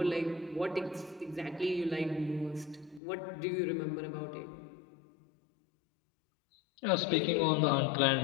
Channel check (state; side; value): drops out; right; at 3.0 s